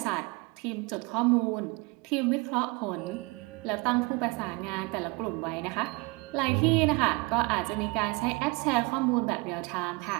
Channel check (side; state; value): left; quieter; 27.1 dB